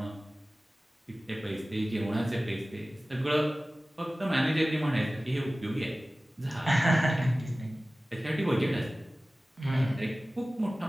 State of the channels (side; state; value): both; normal; correlation 0.97